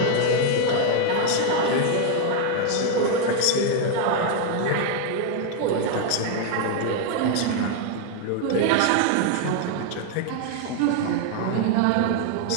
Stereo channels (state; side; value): different; both; correlation 0.00